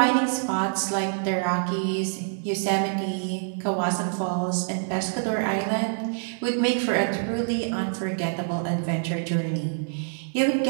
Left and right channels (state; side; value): silent; left; digital silence